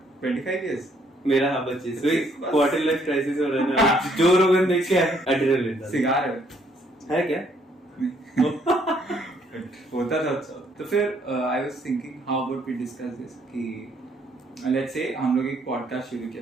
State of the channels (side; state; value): both; normal; correlation 0.67